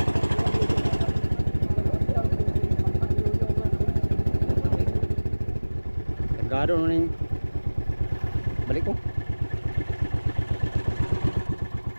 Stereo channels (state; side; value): inverted; both; correlation -1.00